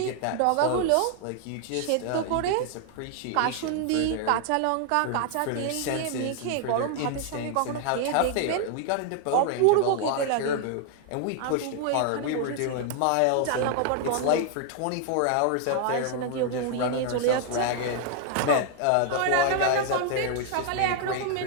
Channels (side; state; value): both; different; correlation 0.00